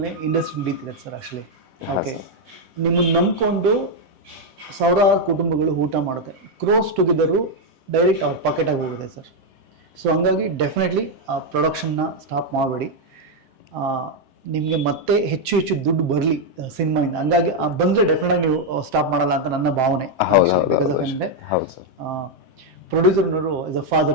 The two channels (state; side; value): late; left; 7.6 ms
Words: ಇಂಡಸ್ಟ್ರಿ ನಡೀತಿದೆ ಸರ್ ಆಕ್ಚುಲಿ. ಓಕೆ, ನಿಮ್ಮನ್ನು ನಂಬ್ಕೊಂಡು ಸಾವಿರಾರು ಕುಟುಂಬಗಳು ಊಟ ಮಾಡುತ್ತೆ. ಕ್ರೋಸ್ ಟುಗೆದರು ಡೈರೆಕ್ಟ್ ಅವ್ರ ಪಾಕೆಟಾಗಿ ಹೋಗುತ್ತೆ ಸರ್. ಸೊ ಹಂಗಾಗಿ ಡೆಫಿನೆಟ್ಲಿ ಆ ಪ್ರೊಡಕ್ಷನ್ನ ಸ್ಟಾಪ್ ಮಾಡಬೇಡಿ. ನಿಮಗೆ ಮತ್ತೆ ಹೆಚ್ಚು ದುಡ್ಡು ಬರಲಿ ಸಿನಿಮಾಯಿಂದ. ಹಂಗಾಗಿ ಬಂದರೆ ಡೆಫಿನೆಟ್ ಆಗಿ ನೀವು ಸ್ಟಾಪ್ ಮಾಡಲ್ಲ ಅಂತ ನನ್ನ ಭಾವನೆ. ಬಿಕಾಸ್ ಆಫ್ ಏನಂದರೆ ಪ್ರೊಡ್ಯೂಸರ್ನವರು ಆಸ್ ಅ